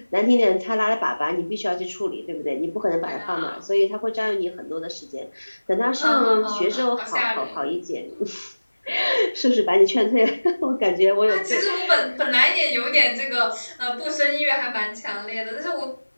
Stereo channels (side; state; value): both; inverted; correlation -1.00